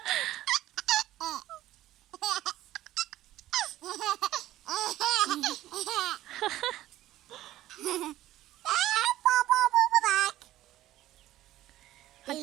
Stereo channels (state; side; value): quieter; left; 14.5 dB